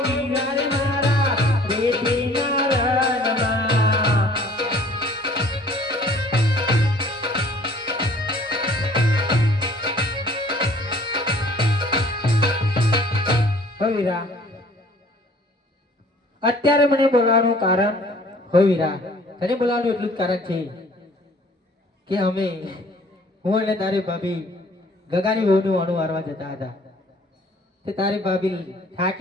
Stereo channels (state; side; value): normal; both; correlation 0.54